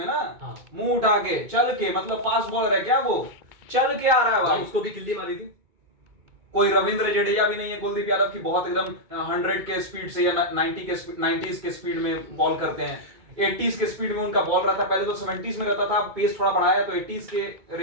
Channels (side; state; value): left; late; 2.2 ms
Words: ना, मुंह उठा के चल के, मतलब फास्ट बॉलर है क्या वो, चल के आ रहा है भाई। उसको भी किल्ली मारी थी। कोई रविंद्र जडेजा भी नहीं है कुलदीप यादव की बहुत एकदम 100 के स्पीड से या 90s के स्पीड में बॉल करते हैं, 80s के स्पीड में उनका बॉल रहता है। पहले तो 70s में रहता था, पेस थोड़ा बढ़ाया तो 80s के